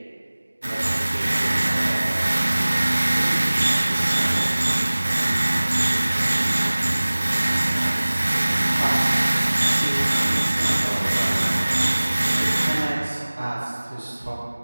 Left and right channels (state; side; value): inverted; both; correlation -1.00